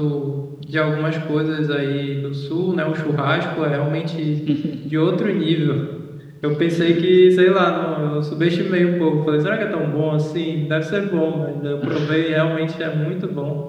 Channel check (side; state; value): both; identical; correlation 1.00